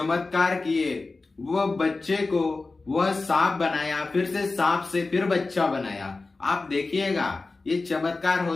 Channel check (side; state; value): right; quieter; 3.6 dB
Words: किए, वह बच्चे को वह सांप बनाया, फिर से सांप से फिर बच्चा बनाया। आप देखिएगा, ये चमत्कार